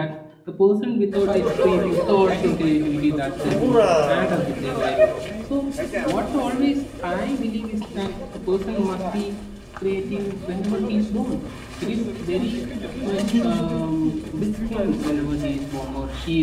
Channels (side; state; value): both; identical; correlation 1.00